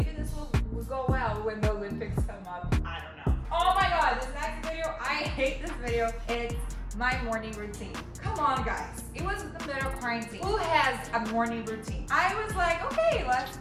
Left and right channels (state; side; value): identical; both; correlation 1.00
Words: this will go well when the I hate this video. It's my morning routine. Come on, guys. It was the middle of quarantine. Who has a morning routine? I was like, okay, let's